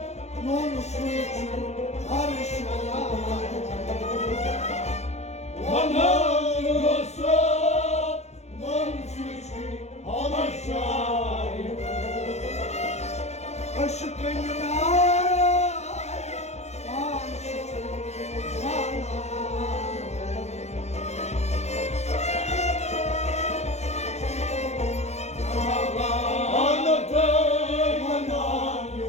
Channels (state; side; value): late; right; 0.32 ms